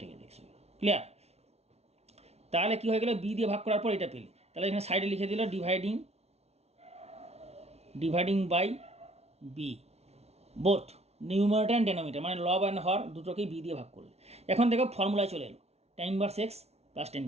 গেলে এক্স হয়ে গেল। ক্লিয়ার। তাহলে কী হয়ে গেলো, বি দিয়ে ভাগ করার পর এটা পেলে, তাহলে এখানে সাইডে লিখে দিল dividing by b, both numerator and denominator, মানে লব অ্যান্ড হর দুটোকেই বি দিয়ে ভাগ করলে। এখন দেখো ফর্মুলায় চলে এলো, tan inverse x plus tan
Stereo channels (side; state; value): left; late; 0.31 ms